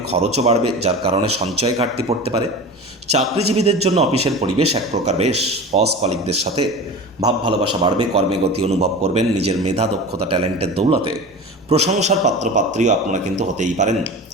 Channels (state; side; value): normal; both; correlation 0.33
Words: খরচও বাড়বে, যার কারণে সঞ্চয় ঘাটতি পড়তে পারে। চাকরিজীবীদের জন্য অফিসের পরিবেশ এক প্রকার বেশ। বস কলিগদের সাথে ভাব ভালোবাসা বাড়বে, কর্মে গতি অনুভব করবেন। নিজের মেধা, দক্ষতা, ট্যালেন্টের দৌলতে প্রশংসার পাত্রপাত্রীও আপনারা কিন্তু হতেই পারেন।